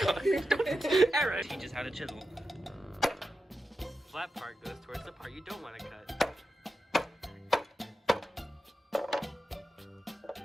Aaron teaches how to chisel. Flat part goes towards the part you don't want to cut.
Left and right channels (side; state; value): both; normal; correlation 0.90